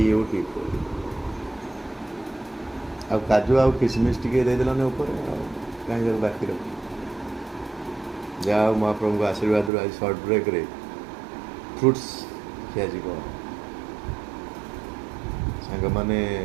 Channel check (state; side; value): drops out; left; at 9.7 s